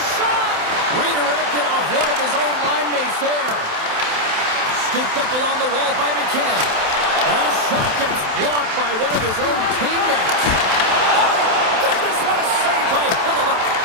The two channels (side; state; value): left; late; 27 ms